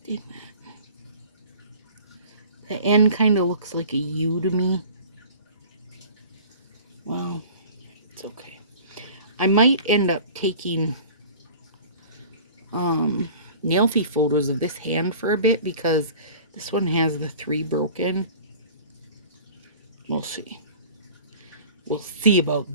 The end kind of looks like a U to me. Well, it's okay. I might end up taking nailfee photos of this hand for a bit because this one has the 3 broken. We'll see. We'll see about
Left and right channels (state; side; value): inverted; both; correlation -0.43